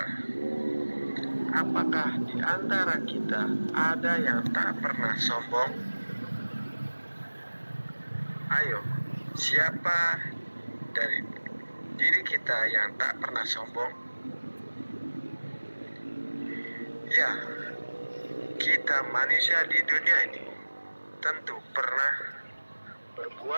apakah di antara kita ada yang tak pernah sombong? Ayo, siapa dari diri kita yang tak pernah sombong? Ya, kita manusia di dunia ini tentu pernah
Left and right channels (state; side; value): inverted; both; correlation -1.00